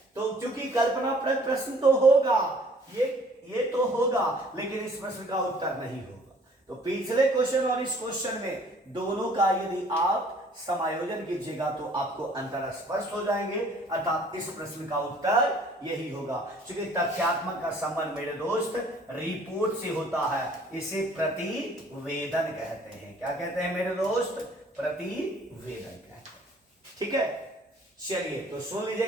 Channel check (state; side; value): normal; both; correlation 0.56